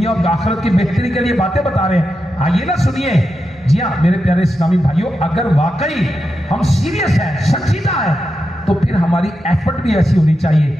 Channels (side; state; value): both; normal; correlation 0.88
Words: اور آخرت کی بہتری کے لیے باتیں بتا رہے ہیں، آئیے نا سنیے۔ جی ہاں میرے پیارے اسلامی بھائیوں، اگر واقعی ہم سیریس ہیں، سنجیدہ ہیں، تو پھر ہماری ایفرٹ بھی ایسی ہونی چاہیے